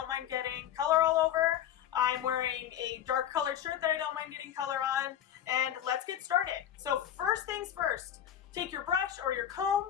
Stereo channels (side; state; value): right; quieter; 10.6 dB